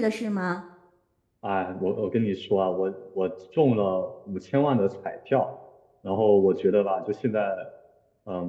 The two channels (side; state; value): both; identical; correlation 1.00